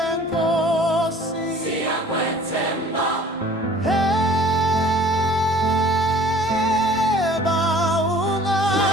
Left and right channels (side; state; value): both; normal; correlation 0.50